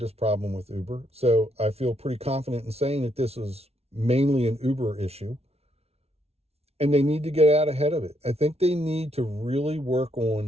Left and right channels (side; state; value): left; late; 0.30 ms